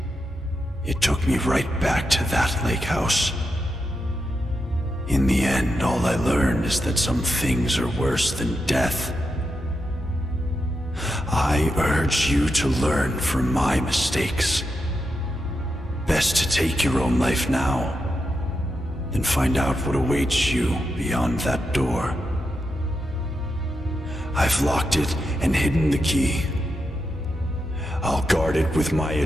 it took me right back to that lake house. In the end, all I learned is that some things are worse than death. I urge you to learn from my mistakes. Best to take your own life now, than find out what awaits you beyond that door. I've locked it and hidden the key. I'll guard it with my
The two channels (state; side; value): normal; both; correlation 0.86